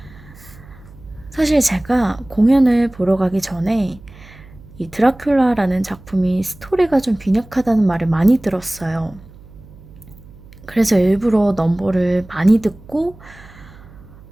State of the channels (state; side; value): noise; right; hum, 21 dB below the sound